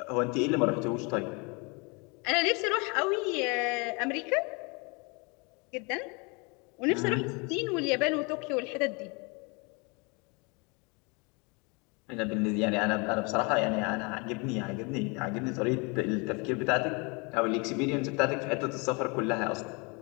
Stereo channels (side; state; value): right; quieter; 30.4 dB